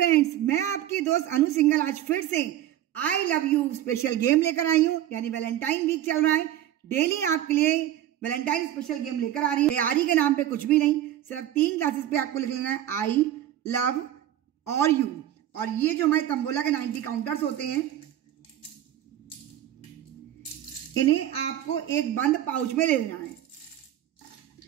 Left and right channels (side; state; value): left; quieter; 12.1 dB